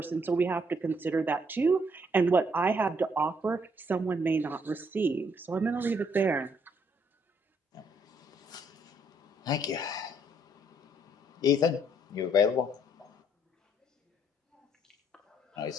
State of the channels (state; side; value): normal; both; correlation 0.69